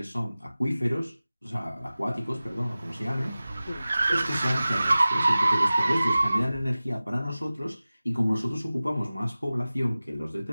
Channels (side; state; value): both; inverted; correlation -0.97